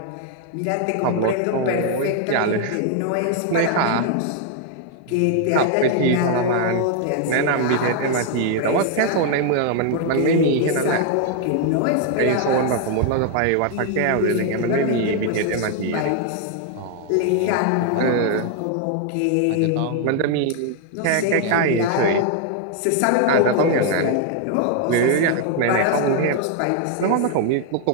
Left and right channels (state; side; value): different; both; correlation 0.00